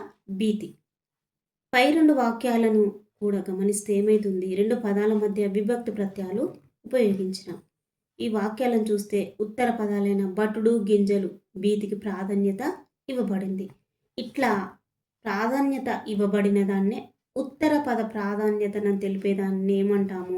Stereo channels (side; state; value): both; identical; correlation 1.00